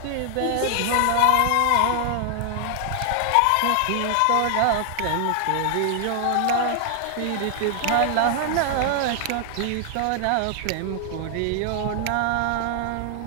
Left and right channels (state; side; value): different; both; correlation 0.00